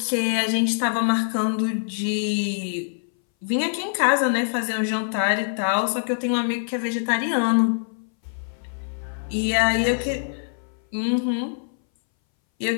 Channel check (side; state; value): right; silent; 61 dB below the other